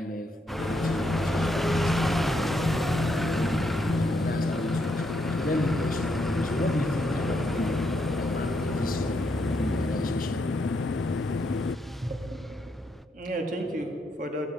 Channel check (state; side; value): normal; both; correlation 0.77